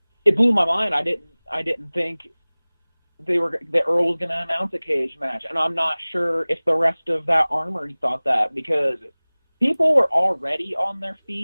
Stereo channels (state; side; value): inverted; both; correlation -1.00